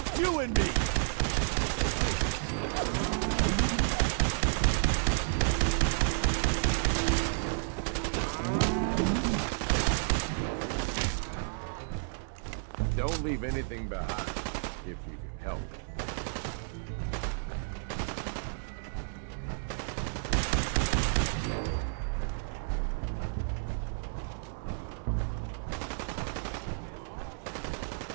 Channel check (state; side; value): silent; left; 57 dB below the other